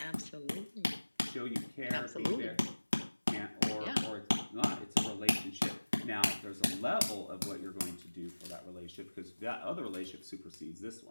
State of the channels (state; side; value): inverted; both; correlation -1.00